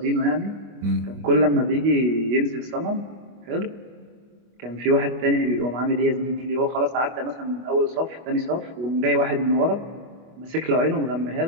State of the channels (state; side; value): late; left; 25 ms